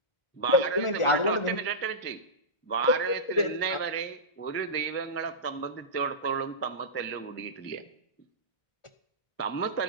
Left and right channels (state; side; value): late; right; 1.4 ms